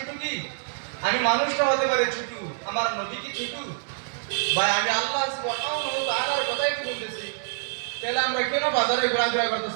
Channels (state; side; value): silent; left; 61 dB below the other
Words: কি আমি মানুষটা হতে পারে ছোট আমার নবী কি ছোট ভাই আমি আল্লাহ সুবহানাহু ওয়া তাআলার কথাই তো বলতেছি তাহলে আমরা কেন বাজারে ঘোরাফেরা